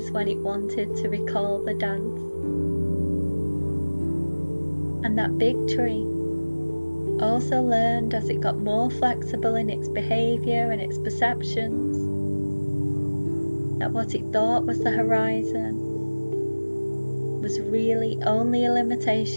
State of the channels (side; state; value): both; inverted; correlation -1.00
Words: when it wanted to recall the dance. And that big tree also learned, as it got more flexible in its behaviour and its perceptions, that what it thought was the horizon was really only a